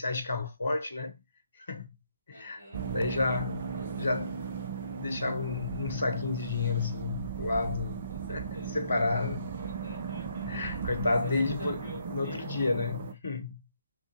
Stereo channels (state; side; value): inverted; both; correlation -0.72